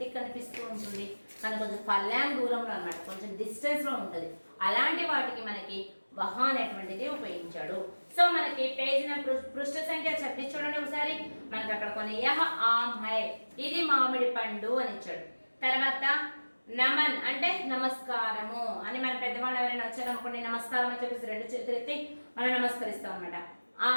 కనిపిస్తూ ఉంటుంది, మన కొంచెం పల్లాంగ్ దూరంలో అన్నమాట, కొంచెం డిస్టెన్స్లో ఉంటుంది, అలాంటి వాటికి మనకి వహ అనేటువంటిది ఉపయోగించాడు। సో మనకి పేజ్ పృష్ఠ సంఖ్య 26 చూడండి ఒకసారి। మనకి అక్కడ కొన్ని యహ ఆమ్ హై, ఇది మామిడి పండు అని ఇచ్చాడు। తర్వాత నమన్ అంటే నమస్కారము అని, మన పెద్దవాళ్ళు ఎవరైనా వచ్చారనుకోండి నమస్కారం అని చెప్పేసి 2 చేతులు ఎత్తి మనం నమస్కరిస్తాం అన్నమాట।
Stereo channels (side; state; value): both; inverted; correlation -1.00